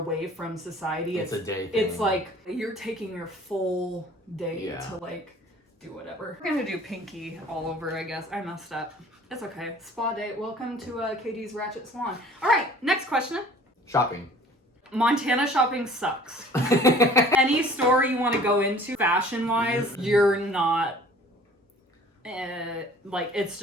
from society. It's a day thing. It's like you're taking your full day to like do whatever. We're gonna do pinky all over, I guess. I messed up. It's okay. Spa day. Welcome to KD's Ratchet Salon. All right, next question. Shopping. Montana shopping sucks. Any store you want to go into, fashion-wise, you're not, like, it's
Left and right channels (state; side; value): normal; both; correlation 0.50